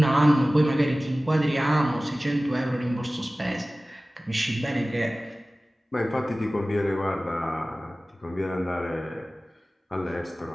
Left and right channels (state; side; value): normal; both; correlation 0.97